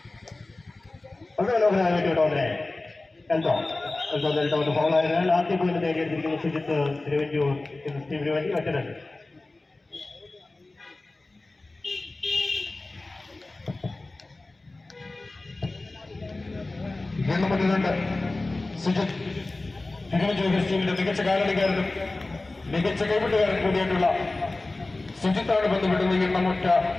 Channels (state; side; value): quieter; right; 3.1 dB